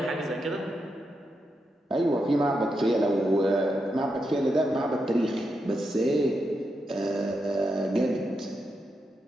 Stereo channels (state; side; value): normal; both; correlation 0.85